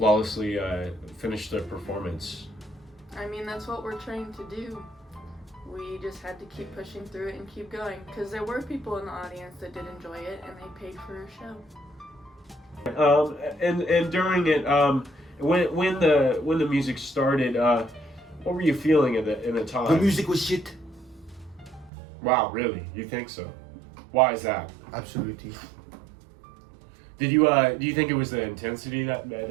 finish the performance? I mean, that's what we're trained to do. We just had to keep pushing through it and keep going, because there were people in the audience that did enjoy it, and they paid for a show. And during it, when the music started, what were you feeling in the time? The music was shit. Wow, really? You think so? Why is that? Absolutely. Do you think it was the intensity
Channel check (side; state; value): left; drops out; at 21.9 s